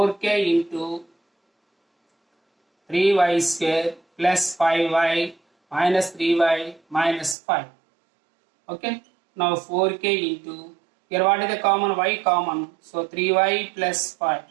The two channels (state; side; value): drops out; left; at 7.4 s